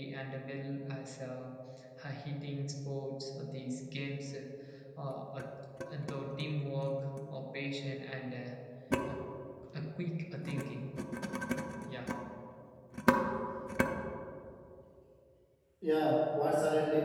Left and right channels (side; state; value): both; identical; correlation 1.00